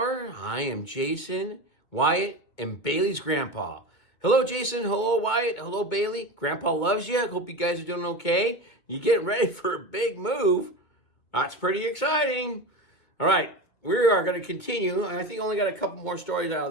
I am Jason, Wyatt, and Bailey's grandpa. Hello Jason, hello Wyatt, hello Bailey. Grandpa loves you. I hope you guys are doing okay. You getting ready for a big move. That's pretty exciting. All right, we are going to continue. I think I only got a couple more stories out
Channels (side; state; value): right; late; 2.2 ms